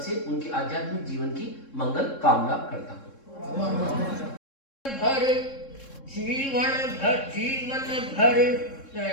से उनके आध्यात्मिक जीवन की मंगल कामना करता हूँ। भर जीवन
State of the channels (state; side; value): late; right; 3.7 ms